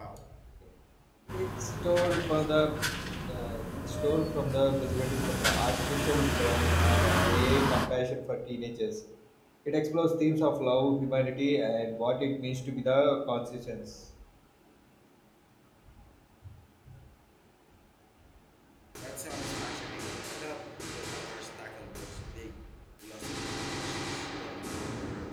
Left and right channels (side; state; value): both; identical; correlation 1.00